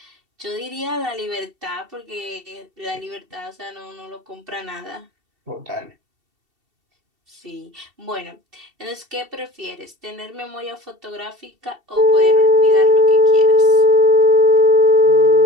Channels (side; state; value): left; late; 2.7 ms